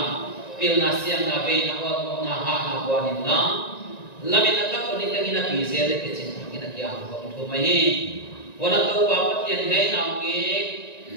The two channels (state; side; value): late; right; 1.9 ms